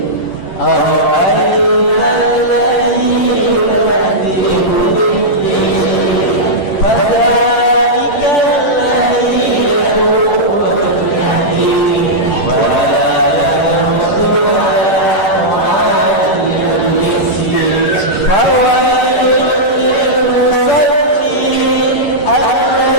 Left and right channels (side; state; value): right; late; 10 ms